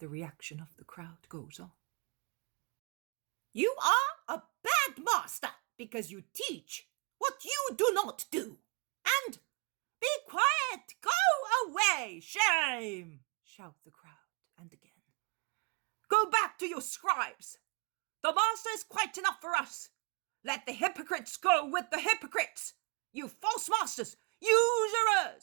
reaction of the crowd, goes on. You are a bad master because you teach what you do not do. And be quiet, go away, shame, shout the crowd, and again. Go back to your scribes. The master is quite enough for us. Let the hypocrites go with the hypocrites. You false masters,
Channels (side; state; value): left; quieter; 31.2 dB